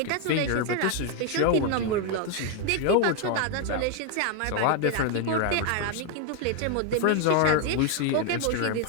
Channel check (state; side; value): different; both; correlation 0.01